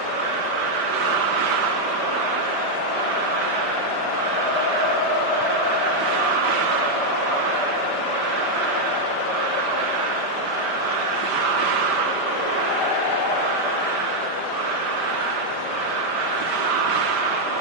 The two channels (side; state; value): right; late; 5.1 ms